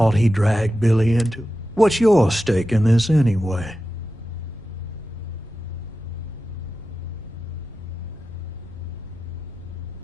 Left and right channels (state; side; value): normal; both; correlation 0.93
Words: he dragged Billy into it. What's your stake in this anyway?